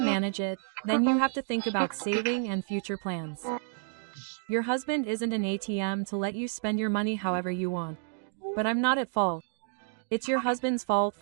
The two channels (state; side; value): silent; left; digital silence